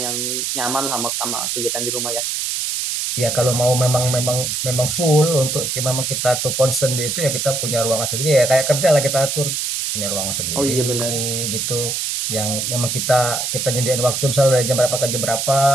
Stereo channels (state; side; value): noise; right; hiss, 1 dB below the sound